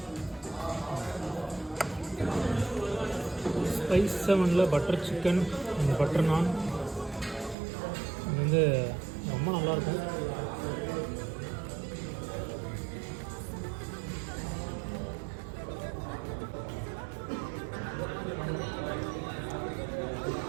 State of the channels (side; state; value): left; drops out; at 7.6 s